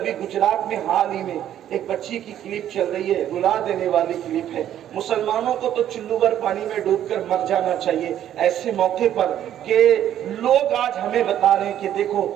गुजरात में हाल ही में एक बच्ची की क्लिप चल रही है, रुला देने वाली क्लिप है। मुसलमानों को तो चुल्लू भर पानी में डूबकर मर जाना चाहिए ऐसे मौके पर कि लोग आज हमें बता रहे हैं कि देखो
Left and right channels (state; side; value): quieter; left; 11.1 dB